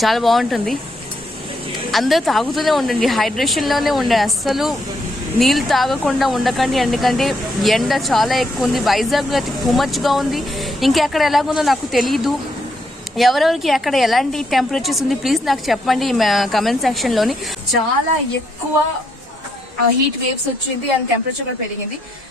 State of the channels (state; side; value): normal; both; correlation 0.76